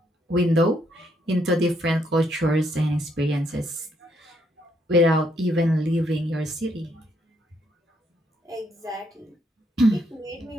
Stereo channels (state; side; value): normal; both; correlation 0.73